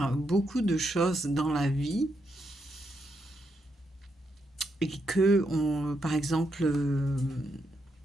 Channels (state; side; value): normal; both; correlation 0.81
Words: beaucoup de choses dans la vie et que, par exemple,